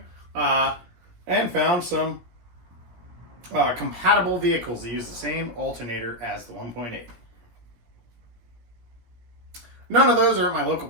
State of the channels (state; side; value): late; left; 17 ms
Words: and found some compatible vehicles that use the same alternator as the 1.8. None of those are at my local